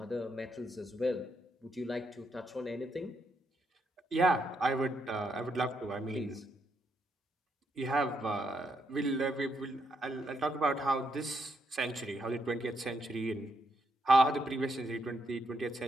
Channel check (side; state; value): both; normal; correlation 0.78